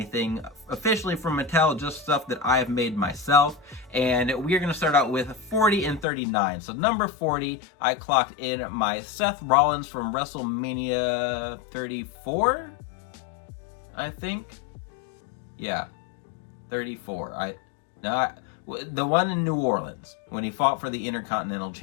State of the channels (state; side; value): drops out; right; at 6.1 s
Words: officially from Mattel, just stuff that I have made myself. And we are going to start out with 40 and 39. So number 40, I clocked in my Seth Rollins from WrestleMania 34, I think. Yeah, 34. The one in New Orleans when he fought for the Intercontinental